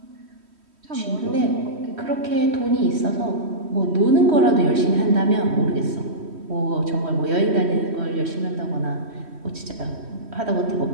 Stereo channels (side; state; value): left; late; 3.1 ms